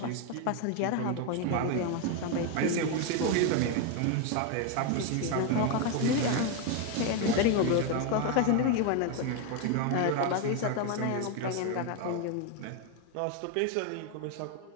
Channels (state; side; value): different; both; correlation 0.01